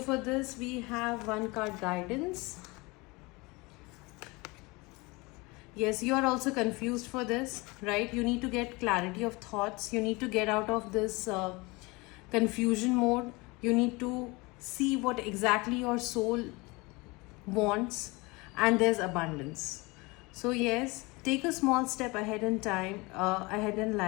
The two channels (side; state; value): right; quieter; 24.9 dB